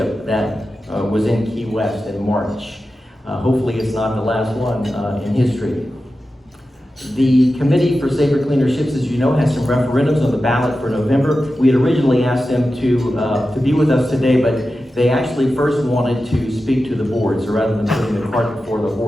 that was in Key West in March. Hopefully it's not the last one in history. The Committee for Safer, Cleaner Ships, as you know, has some referendums on the ballot for November. We had originally asked them to be with us today, but they actually first wanted to speak to the board. So rather than putting the cart before the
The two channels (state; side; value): normal; both; correlation 0.92